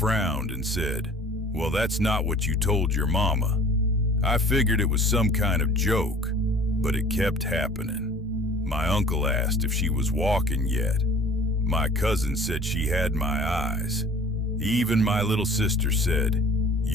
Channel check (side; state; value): both; normal; correlation 0.47